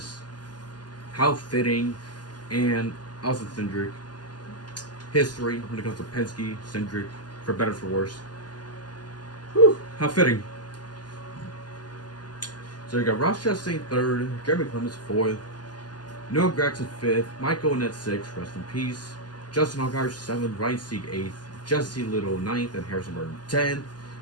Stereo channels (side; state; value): right; late; 0.70 ms